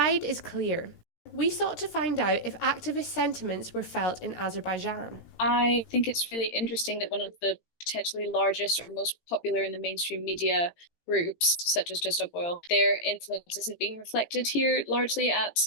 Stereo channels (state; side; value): late; right; 18 ms